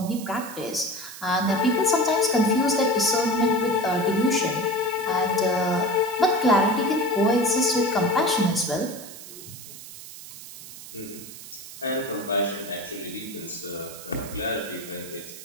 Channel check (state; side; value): noise; right; hiss, 14 dB below the sound